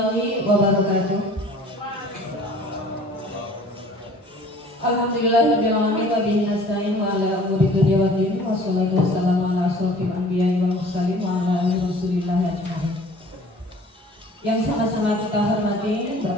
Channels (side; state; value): both; normal; correlation 0.49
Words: wabarakatuh. Alhamdulillahirabbil alamin wa bihi nasta'in wa ala umuri dunya waddin wa sholatu wassalamu ala asyrofil anbiya'i wal mursalin wa ala alihi wasallam ajmain. Yang sama-sama kita hormati